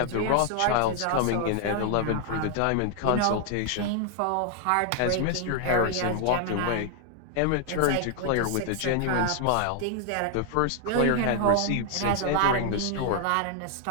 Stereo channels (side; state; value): both; different; correlation 0.00